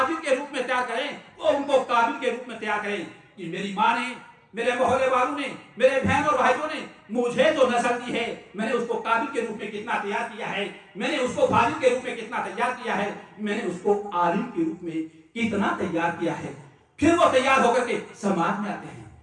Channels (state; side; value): identical; both; correlation 1.00